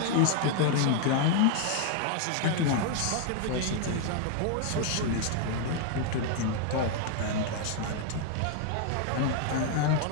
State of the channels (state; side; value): different; both; correlation 0.00